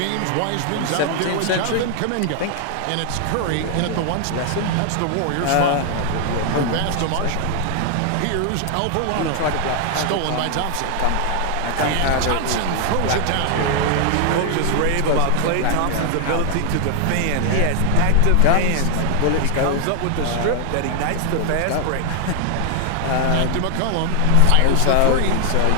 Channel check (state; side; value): different; both; correlation 0.00